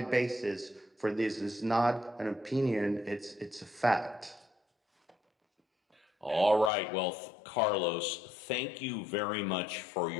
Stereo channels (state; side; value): drops out; right; at 6.7 s